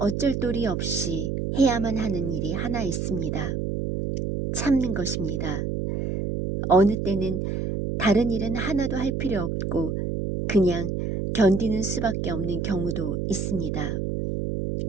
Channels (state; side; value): noise; right; hum, 2 dB below the sound